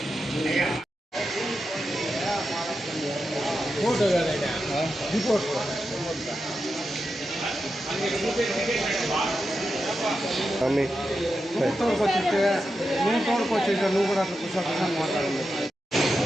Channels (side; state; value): both; normal; correlation 0.89